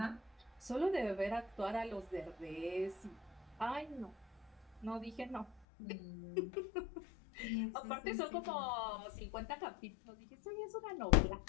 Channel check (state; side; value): drops out; right; at 5.7 s